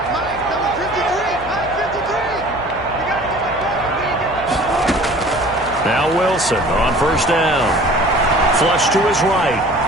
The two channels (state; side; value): noise; left; hum, 16 dB below the sound